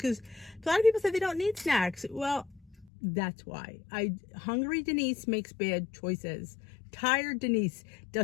a lot of people say they don't need snacks. Well, that's why. Hungry Denise makes bad choices. Tired Denise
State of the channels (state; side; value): drops out; right; at 2.9 s